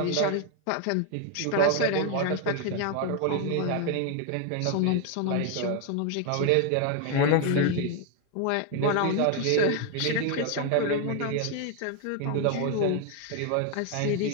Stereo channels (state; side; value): different; both; correlation 0.01